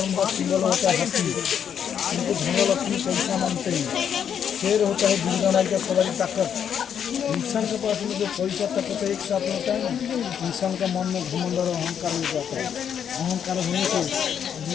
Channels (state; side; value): quieter; right; 8.4 dB